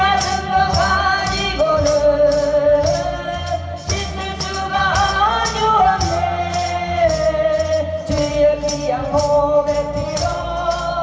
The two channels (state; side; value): identical; both; correlation 1.00